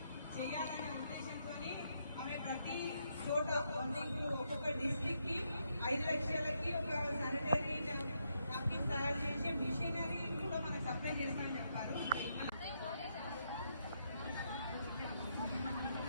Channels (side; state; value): both; inverted; correlation -0.79